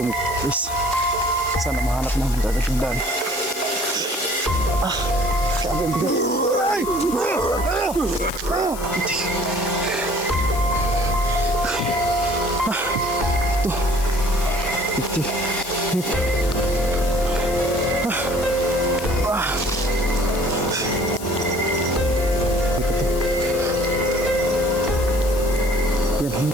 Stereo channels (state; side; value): noise; left; hiss, 13 dB below the sound